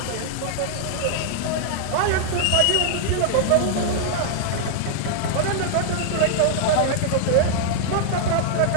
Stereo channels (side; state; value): both; different; correlation -0.01